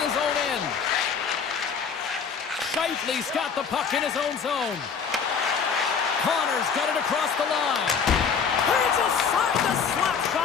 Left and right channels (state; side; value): quieter; right; 6.2 dB